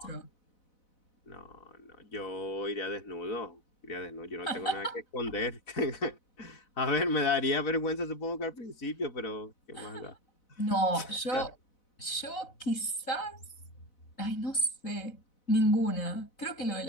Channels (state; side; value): late; right; 4.0 ms